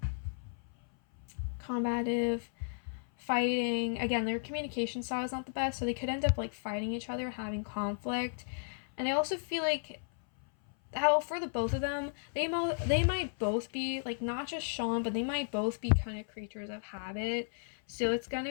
fighting. Again, their communication style is not the best, so they could end up like fighting each other, having conflict. And I also feel like how for the both of them, they might both be like not just Shawn, but they might both be kind of creatures of habit. So it's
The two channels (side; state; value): right; silent; 55 dB below the other